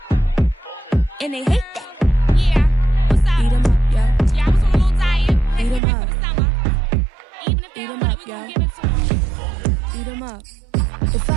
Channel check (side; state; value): left; drops out; at 5.8 s